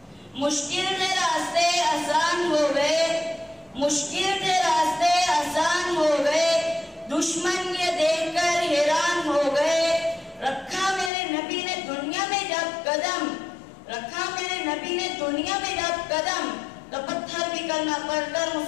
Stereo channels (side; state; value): right; drops out; at 11.1 s